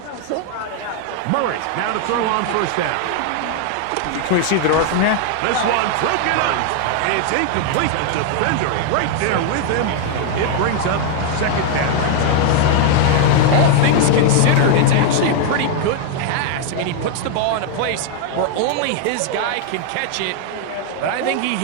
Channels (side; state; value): both; different; correlation 0.00